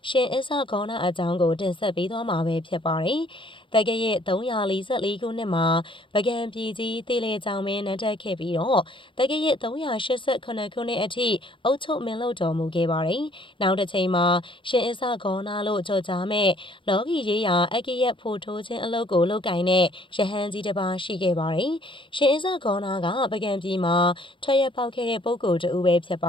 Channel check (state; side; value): late; right; 0.25 ms